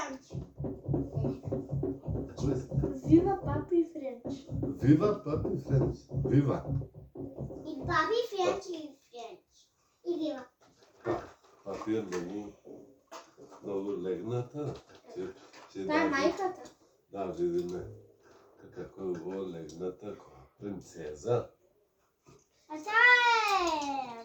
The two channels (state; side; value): identical; both; correlation 1.00